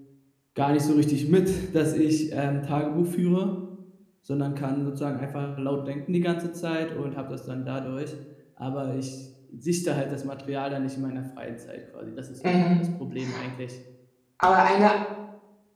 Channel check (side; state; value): both; identical; correlation 1.00